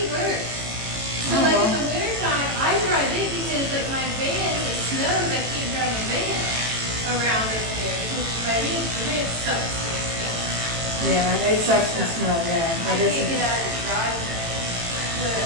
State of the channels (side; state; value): left; late; 18 ms